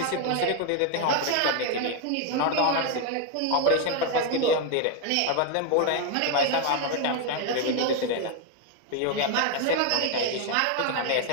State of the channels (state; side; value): different; both; correlation 0.01